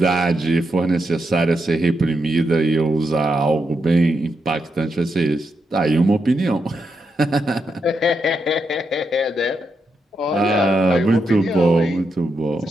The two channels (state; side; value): normal; both; correlation 0.83